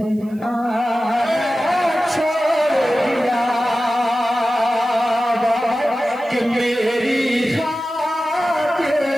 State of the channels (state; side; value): noise; right; hiss, 29 dB below the sound